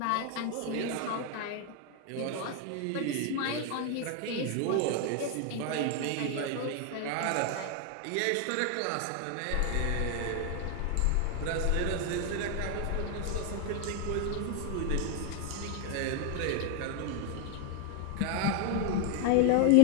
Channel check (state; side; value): different; both; correlation 0.00